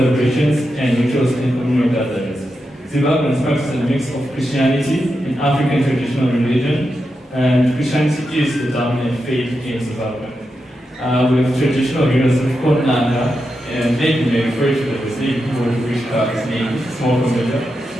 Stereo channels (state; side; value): normal; both; correlation 0.87